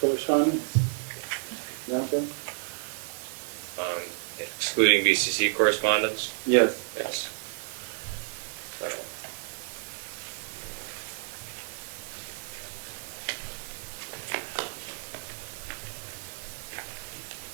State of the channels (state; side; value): silent; left; digital silence